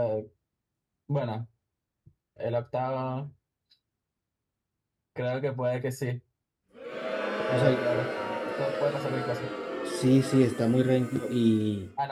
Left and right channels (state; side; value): identical; both; correlation 1.00